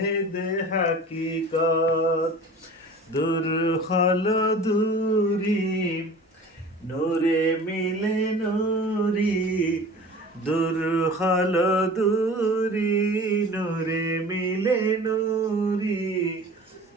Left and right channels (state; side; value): normal; both; correlation 0.41